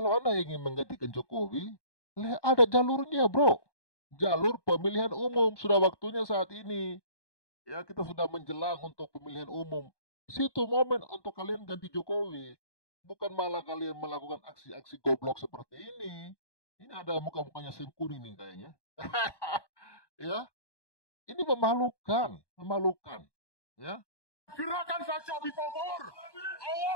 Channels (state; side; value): late; right; 1.2 ms